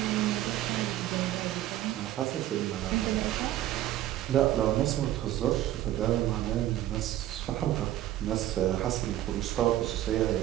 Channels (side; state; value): left; quieter; 13.6 dB